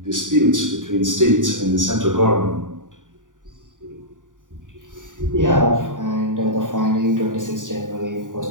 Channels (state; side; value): late; left; 0.88 ms